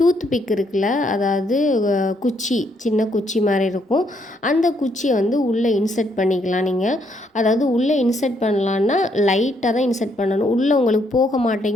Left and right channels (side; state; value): both; normal; correlation 0.72